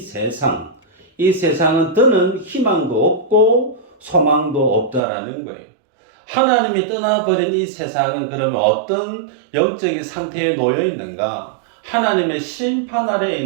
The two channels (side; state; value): left; drops out; at 5.0 s